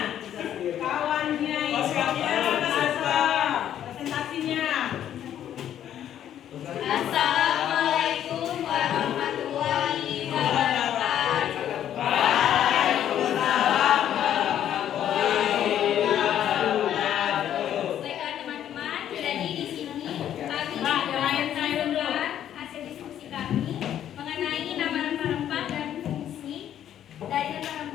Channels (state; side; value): quieter; right; 10.6 dB